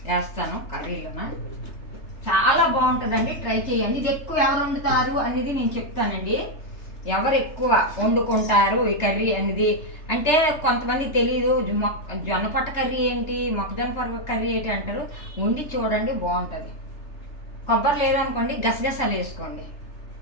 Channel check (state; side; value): late; right; 3.3 ms